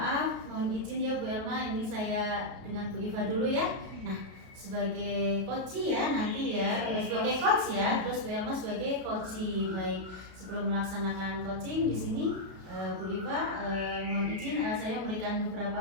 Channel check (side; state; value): left; late; 32 ms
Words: mohon izin ya Bu Elma, ini saya dengan Bu Iva dulu ya. Nah, sebagai coach ya nanti ya, sebagai coach ya, terus Bu Elma sebagai coach. Baik, sebelum melaksanakan coaching di sini Bu Iva mohon izin saya memberikan